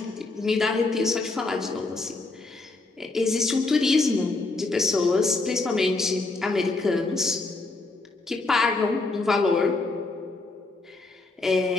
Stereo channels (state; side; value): quieter; right; 3.4 dB